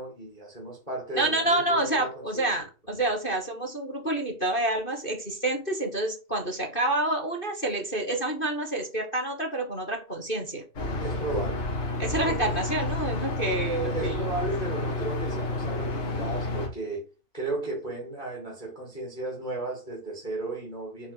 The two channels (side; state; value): right; late; 2.5 ms